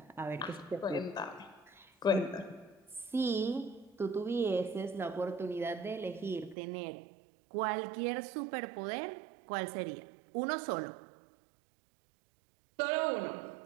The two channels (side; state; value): left; drops out; at 6.6 s